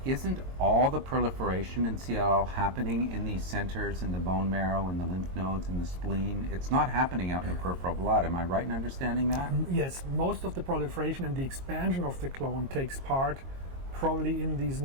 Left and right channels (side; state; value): left; late; 22 ms